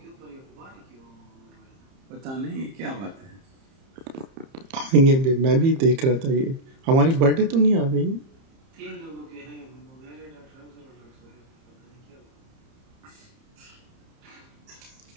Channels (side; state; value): left; late; 30 ms